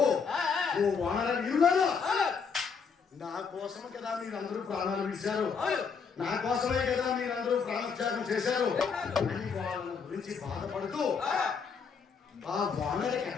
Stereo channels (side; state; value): right; quieter; 5.8 dB